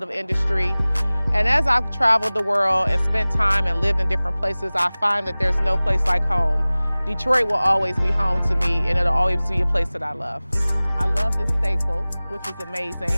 industry. And as I've traveled the world and spent time and lived in different places, I find that there's no place like home. Detroit will always be home to me, and it'll always be a place that I love. I love this staple, which is amazing.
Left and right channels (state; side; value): inverted; both; correlation -0.99